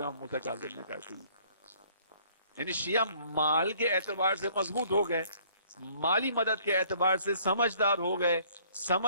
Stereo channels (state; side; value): inverted; both; correlation -0.59